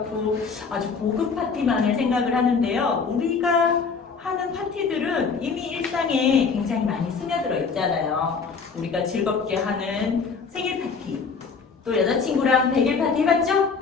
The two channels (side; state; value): right; quieter; 5.2 dB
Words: 아주 고급 파티만을 생각을 하는데요. 우리가 하는 파티들은 이미 일상에 굉장히 많이 스며들어 있잖아요. 우리가 즐겁게 하는 생일 파티, 또 여자친구랑 100일 파티 해봤죠?